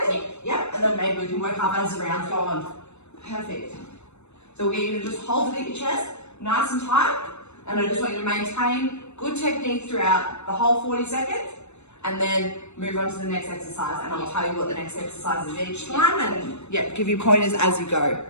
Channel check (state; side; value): late; right; 0.81 ms